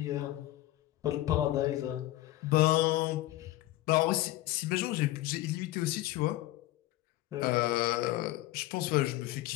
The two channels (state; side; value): quieter; right; 16.2 dB